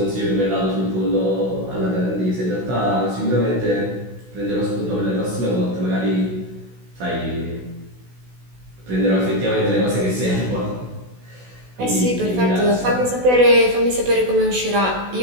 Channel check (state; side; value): late; left; 16 ms